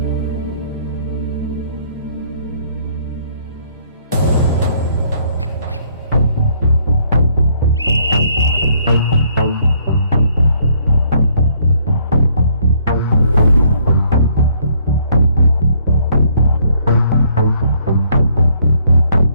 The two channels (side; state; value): both; inverted; correlation -0.66